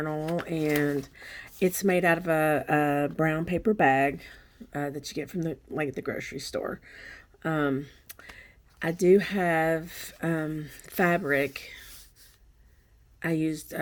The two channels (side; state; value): both; identical; correlation 1.00